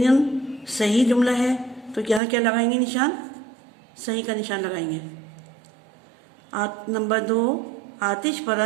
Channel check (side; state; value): left; drops out; at 2.2 s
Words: सही जुमला है, तो यहाँ क्या लगाएंगे निशान? सही का निशान लगाएंगे। नंबर 2, आतिश